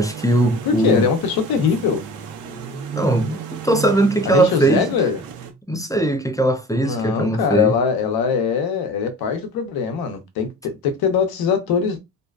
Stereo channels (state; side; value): normal; both; correlation 0.39